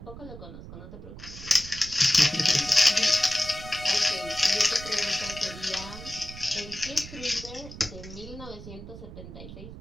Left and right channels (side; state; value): right; noise; rumble, 13 dB below the sound